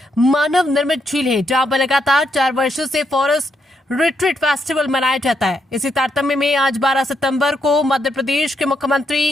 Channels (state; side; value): normal; both; correlation 0.78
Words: मानव निर्मित झील है, जहां पर लगातार 4 वर्षों से फॉरेस्ट रिट्रीट फेस्टिवल मनाया जाता है। इसी तारतम्य में आज 12 सितंबर को मध्य प्रदेश के